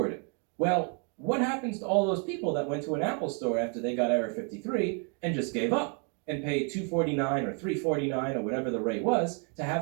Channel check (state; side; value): quieter; left; 38.3 dB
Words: it. Well, what happens to all those people that went to an Apple store after they got error 53 and just gave up and paid $249 or $349 or whatever the rate was to